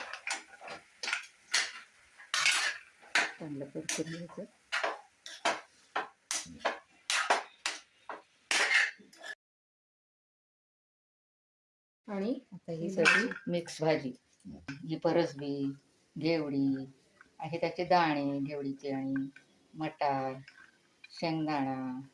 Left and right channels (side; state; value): both; identical; correlation 1.00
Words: चांगलं परतून घ्यायचं. आणि आता ही सगळी मिक्स भाजी. ही परसबी, घेवडी आहे, त्याचे दाणे घेवडीचे आणि मटार, शेंगदाणा,